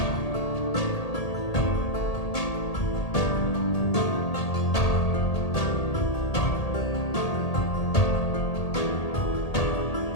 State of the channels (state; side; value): late; right; 1.8 ms